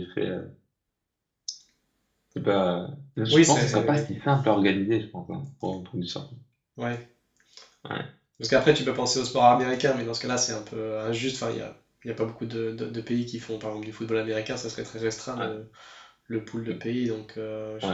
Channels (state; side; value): identical; both; correlation 1.00